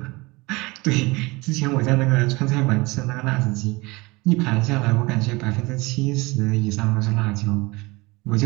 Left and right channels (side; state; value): left; quieter; 23.6 dB